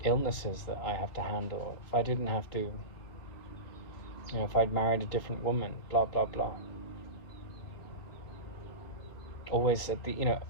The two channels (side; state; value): right; late; 3.8 ms